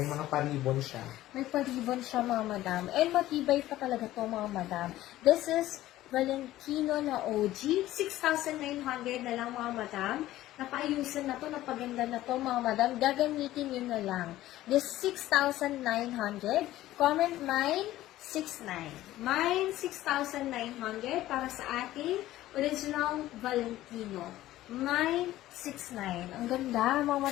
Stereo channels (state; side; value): quieter; right; 15.1 dB